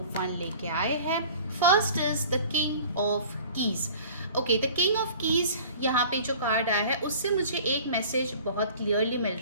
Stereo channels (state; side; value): inverted; both; correlation -0.45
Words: वन लेके आए हैं। First is the king of keys. Okay, the king of keys यहाँ पे जो कार्ड आया है उससे मुझे एक मैसेज बहुत क्लियरली मिल